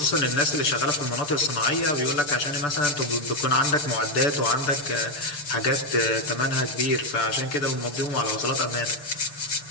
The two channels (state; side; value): late; right; 6.8 ms